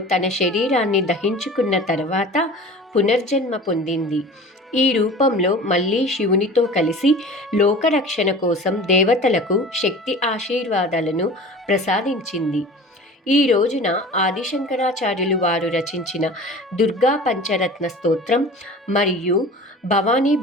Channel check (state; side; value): normal; both; correlation 0.39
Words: తన శరీరాన్ని దహించుకున్న తర్వాత పునర్జన్మ పొందింది. ఈ రూపంలో మళ్ళీ శివునితో కలిసి లోకరక్షణ కోసం దేవతలకు శక్తి ఆశీర్వాదాలను ప్రసాదించింది. ఈ రోజున ఆదిశంకరాచార్యులు వారు రచించిన దుర్గా పంచరత్న స్తోత్రం మరియు భవానీ